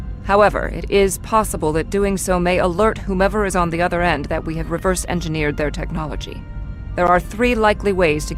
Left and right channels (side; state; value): both; identical; correlation 1.00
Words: However, it is possible that doing so may alert whomever is on the other end that we have reverse-engineered their technology. There are 3 likely ways to